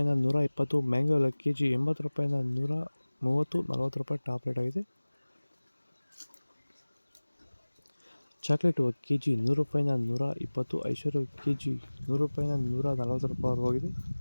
120, ಮ್ಯಾಂಗೋ ಎಲ್ಲ ಕೆಜಿ 80 ರೂಪಾಯಿಂದ 130, 40 ರೂಪಾಯಿ ಟಾಪ್ ರೇಟ್ ಆಗಿದೆ. ಚಾಕ್ಲೇಟ್ ಕೆಜಿ 100 ರೂಪಾಯಿಂದ 120, ಐಶ್ವರ್ಯ ಕೆಜಿ 100 ರೂಪಾಯಿಂದ 140 ರೂಪಾಯಿ ಹೋಗಿದೆ.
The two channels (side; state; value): both; inverted; correlation -1.00